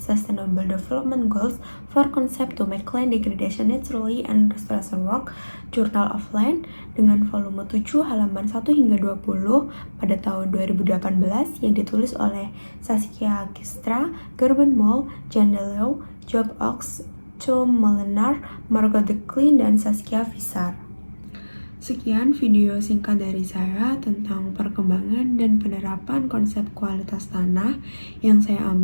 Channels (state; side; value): inverted; both; correlation -1.00